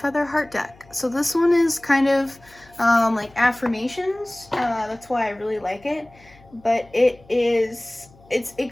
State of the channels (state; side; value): noise; left; hum, 27 dB below the sound